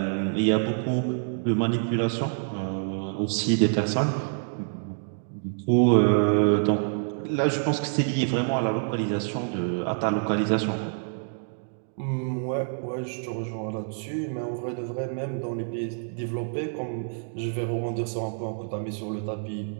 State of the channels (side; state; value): left; silent; digital silence